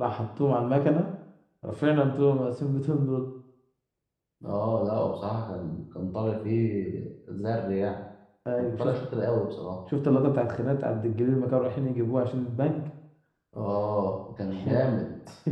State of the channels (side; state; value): both; identical; correlation 1.00